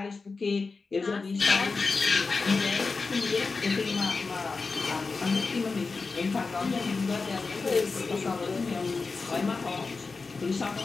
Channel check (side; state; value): right; quieter; 4.2 dB